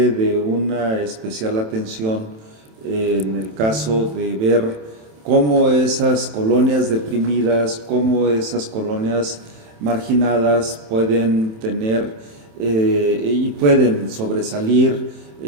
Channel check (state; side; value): late; left; 27 ms